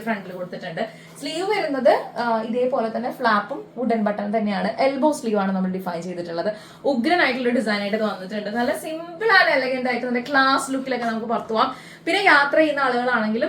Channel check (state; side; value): identical; both; correlation 1.00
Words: ഫ്രണ്ടിൽ കൊടുത്തിട്ടുണ്ട്. സ്ലീവ് വരുന്നത് ഇതേപോലെ തന്നെ ഫ്ലാപ്പും വുഡൻ ബട്ടൺ തന്നെയാണ്. എൽബോ സ്ലീവ് ആണ് നമ്മൾ ഡിഫൈൻ ചെയ്തിട്ടുള്ളത്. ഉഗ്രനായിട്ടുള്ള ഡിസൈൻ ആയിട്ട് വന്നിട്ടുണ്ട്. നല്ല സിമ്പിൾ ആൻഡ് എലഗന്റ് ആയിട്ട് നല്ല ക്ലാസ് ലുക്കിലൊക്കെ നമുക്ക് പുറത്തു പോവാം. പിന്നെ യാത്ര ചെയ്യുന്ന ആളുകളാണെങ്കിലും